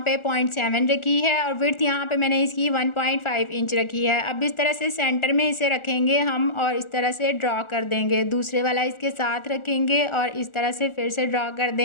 पे 0.7 रखी है और विड्थ यहाँ पे मैंने इसकी 1.5 इंच रखी है। अब इस तरह से सेंटर में इसे रखेंगे हम और इस तरह से ड्रॉ कर देंगे। दूसरे वाला इसके साथ रखेंगे और इस तरह से फिर से ड्रॉ कर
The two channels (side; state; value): right; late; 1.4 ms